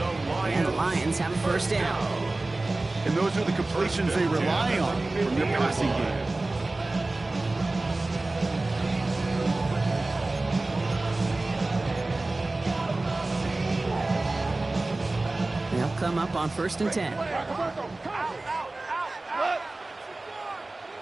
And the Lions have a 1st down. And those are the completions they rely on from their passing game. They'll come up on 1st and 10.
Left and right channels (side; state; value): left; quieter; 3.0 dB